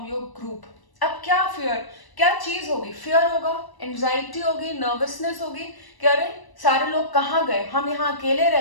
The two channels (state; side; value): late; right; 1.0 ms